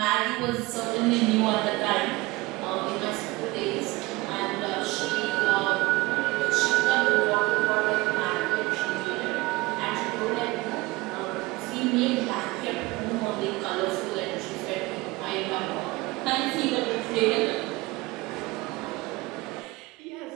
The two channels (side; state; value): left; quieter; 21.3 dB